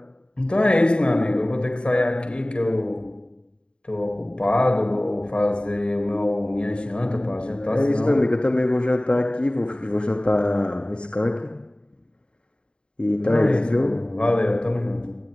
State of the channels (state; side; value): late; right; 0.052 ms